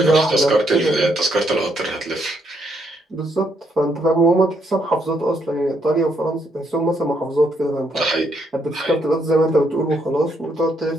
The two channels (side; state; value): both; normal; correlation 0.74